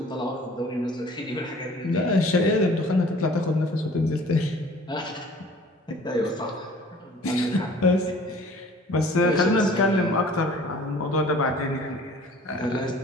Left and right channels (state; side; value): normal; both; correlation 0.50